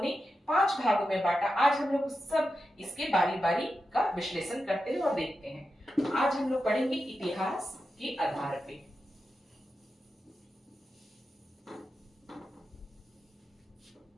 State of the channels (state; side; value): normal; both; correlation 0.90